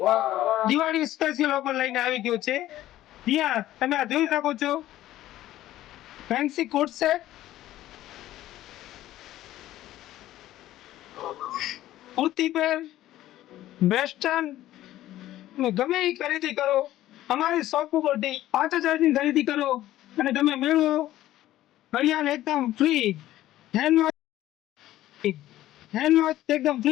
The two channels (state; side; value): quieter; right; 14.3 dB